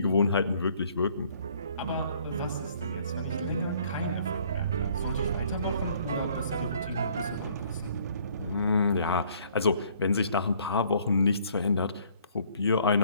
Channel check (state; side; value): inverted; both; correlation -0.60